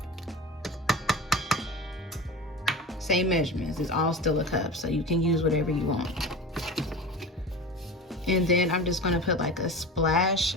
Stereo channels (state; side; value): normal; both; correlation 0.31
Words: measurements. It's all still a cup, so you can use whatever you want. And then I'm just going to put like a splash